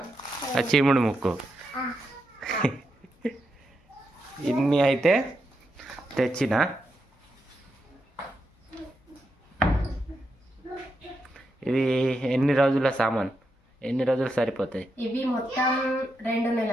చీముడు ముక్కు. ఇన్ని అయితే తెచ్చిన. ఇది ఎన్ని రోజుల సామాన్? ఎన్ని రోజులు సరిపోతాయి? ఇవి మొత్తం 2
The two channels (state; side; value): normal; both; correlation 0.84